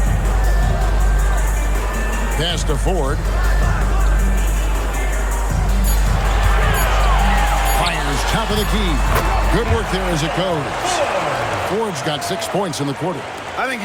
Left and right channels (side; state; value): both; identical; correlation 1.00